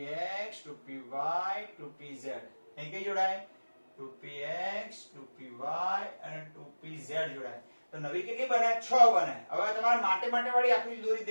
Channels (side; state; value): both; inverted; correlation -1.00